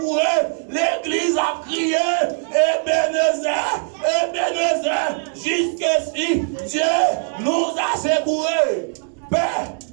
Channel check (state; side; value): silent; left; 62 dB below the other